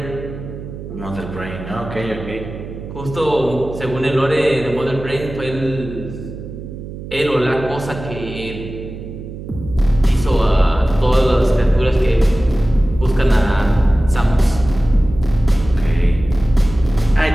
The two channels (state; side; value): noise; right; hum, 11 dB below the sound